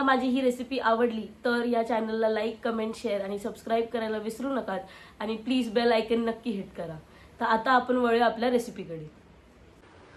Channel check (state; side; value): identical; both; correlation 1.00